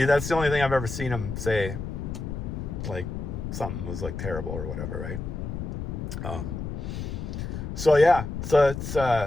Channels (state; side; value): noise; left; rumble, 5 dB below the sound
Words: that's the only thing I've ever seen him say, like something was like terrible or whatever, right? So yeah, so it's